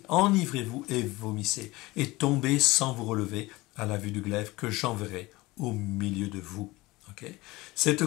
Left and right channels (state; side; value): quieter; right; 20.8 dB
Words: enivrez-vous et vomissez, et tombez sans vous relever à la vue du glaive que j'enverrai au milieu de vous. Okay. Cette